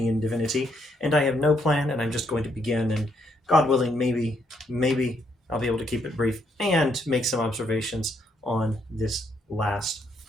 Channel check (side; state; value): both; normal; correlation 0.74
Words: divinity, and I have no plan, and I'm just going to begin, and God willing, maybe I'll be able to keep it brief and make some observations on this last